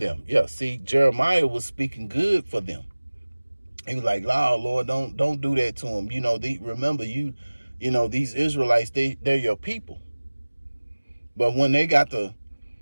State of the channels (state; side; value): inverted; both; correlation -1.00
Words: Yeah, see, Jeremiah was speaking good for them. He was like, Lord, don't do that to them. Remember, these Israelites, they're your people. But when they got to